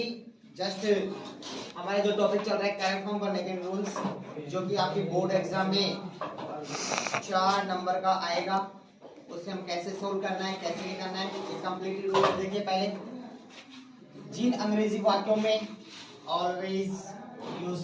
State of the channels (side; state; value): both; identical; correlation 1.00